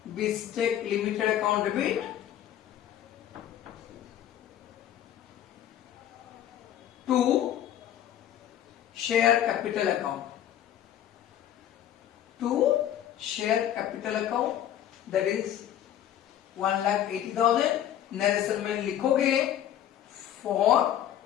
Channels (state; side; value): quieter; right; 11.0 dB